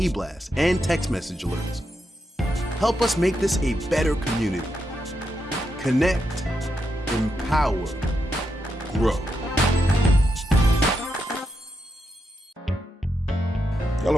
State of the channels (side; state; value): both; normal; correlation 0.84